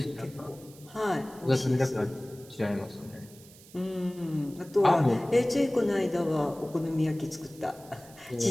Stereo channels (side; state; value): right; noise; hiss, 22 dB below the sound